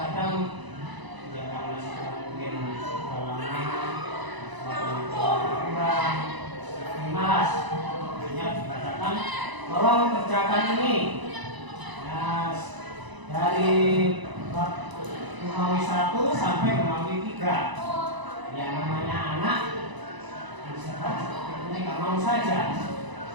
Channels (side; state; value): left; late; 1.0 ms